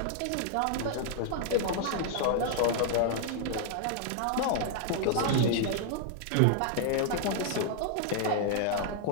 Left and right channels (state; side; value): different; both; correlation 0.00